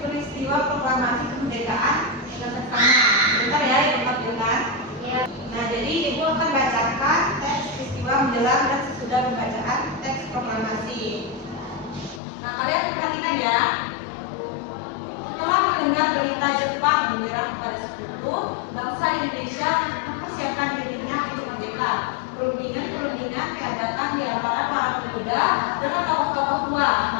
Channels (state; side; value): drops out; right; at 12.2 s